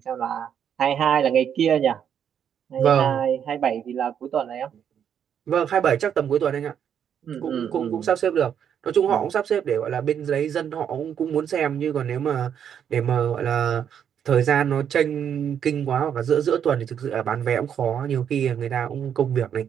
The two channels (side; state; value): left; quieter; 8.5 dB